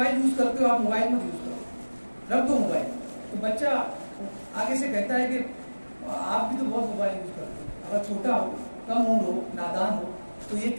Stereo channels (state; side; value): inverted; both; correlation -1.00